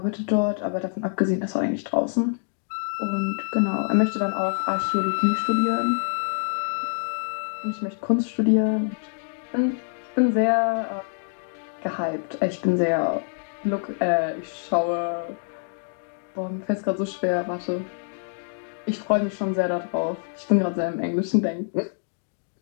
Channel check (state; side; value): silent; right; digital silence